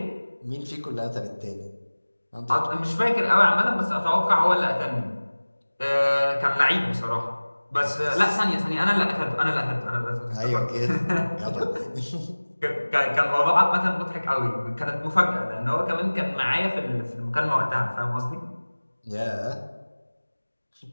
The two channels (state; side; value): inverted; both; correlation -1.00